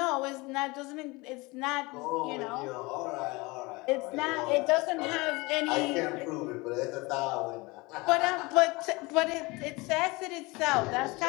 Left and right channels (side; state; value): right; quieter; 24.2 dB